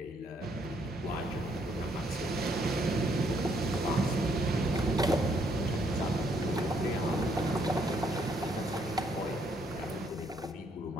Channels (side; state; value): both; normal; correlation 0.71